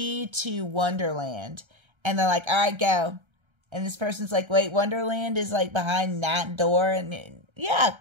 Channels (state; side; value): late; left; 1.3 ms